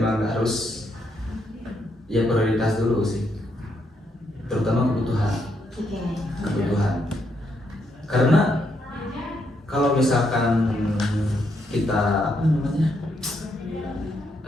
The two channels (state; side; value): normal; both; correlation 0.77